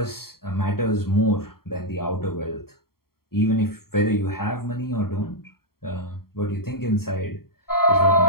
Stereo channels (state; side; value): late; right; 0.93 ms